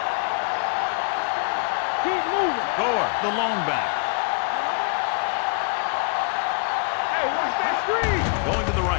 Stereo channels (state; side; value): quieter; right; 38.1 dB